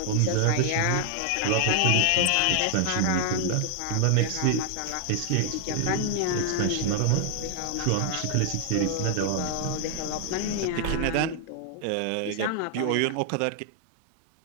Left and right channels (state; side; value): different; both; correlation 0.00